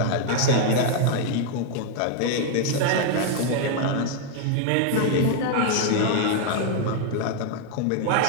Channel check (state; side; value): different; both; correlation 0.00